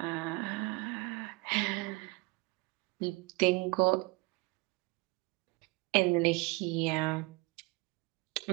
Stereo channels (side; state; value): left; quieter; 25.9 dB